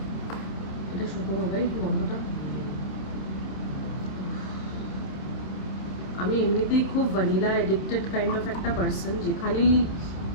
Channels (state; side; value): late; right; 27 ms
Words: এটা শুধু হবে গন্ধটা। আমি এমনিতেই খুব ভ্যানিলা এডিক্টেড কাইন্ড অফ একটা পার্সন, যেখানেই